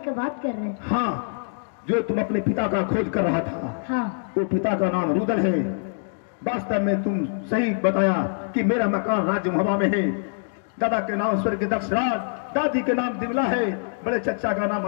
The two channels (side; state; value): right; silent; digital silence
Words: बात कर रहे हैं। हाँ, जो तुम अपने पिता का खोज कर रहा था, हाँ, वो पिता का नाम रुदल है। वास्तव में तुम सही बताया कि मेरा मकान राज्य मुहवा में है। दादा के नाम स्वर्गीय दक्षराज, दादी के नाम दिमला है, बड़े चचा का नाम